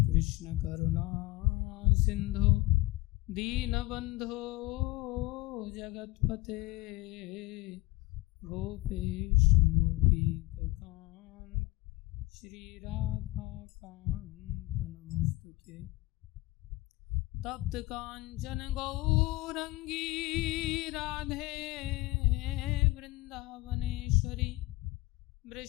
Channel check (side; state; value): right; quieter; 20.1 dB